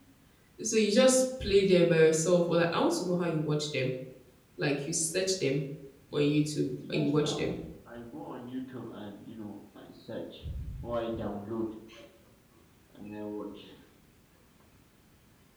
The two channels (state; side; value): identical; both; correlation 1.00